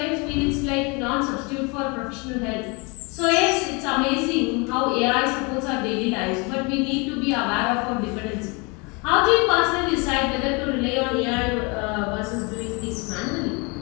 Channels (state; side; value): quieter; right; 29.7 dB